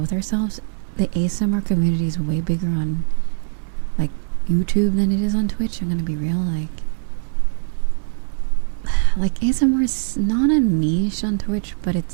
with ourselves, the ASMR community is way bigger on like YouTube than it is on Twitch. I'm gonna be real, like ASMR is not a niche on Twitch, but it's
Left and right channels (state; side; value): silent; left; 65 dB below the other